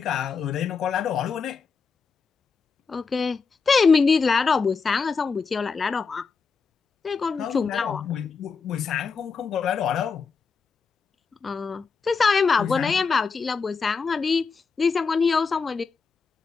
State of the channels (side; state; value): right; quieter; 5.2 dB